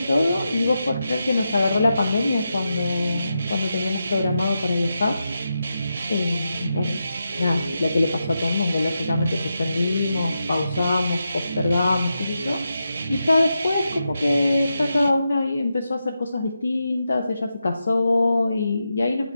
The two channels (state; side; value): inverted; both; correlation -0.88